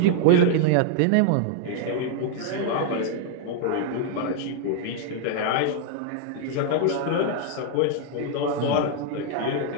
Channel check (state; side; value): different; both; correlation 0.00